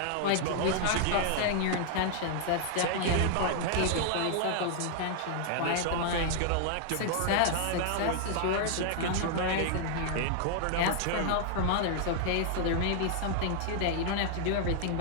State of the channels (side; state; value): both; different; correlation -0.01